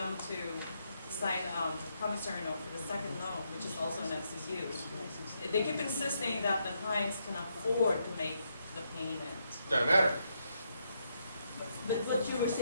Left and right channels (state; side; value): inverted; both; correlation -0.78